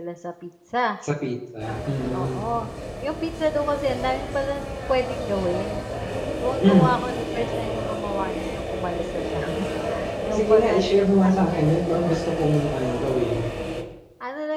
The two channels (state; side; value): identical; both; correlation 1.00